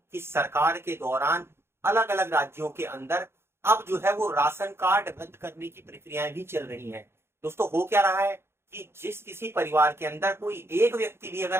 की सरकार के दौरान अलग अलग राज्यों के अंदर अब जो है वो राशन कार्ड रद्द करने की प्रक्रियाएं भी चल रही हैं। दोस्तों, हो क्या रहा है कि जिस किसी परिवार के अंदर कोई एक व्यक्ति भी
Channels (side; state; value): left; late; 0.12 ms